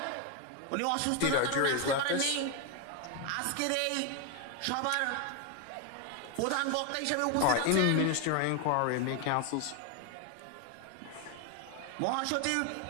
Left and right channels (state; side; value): different; both; correlation 0.01